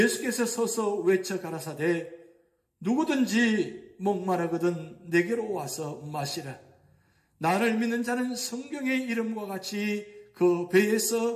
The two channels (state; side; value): identical; both; correlation 1.00